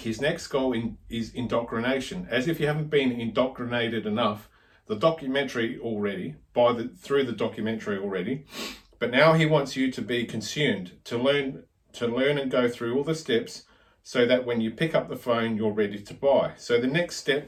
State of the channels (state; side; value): identical; both; correlation 1.00